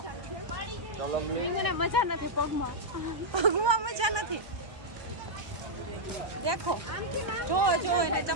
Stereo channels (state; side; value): late; left; 1.2 ms